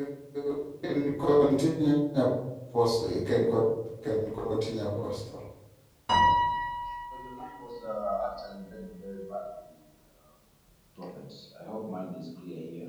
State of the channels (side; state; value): both; identical; correlation 1.00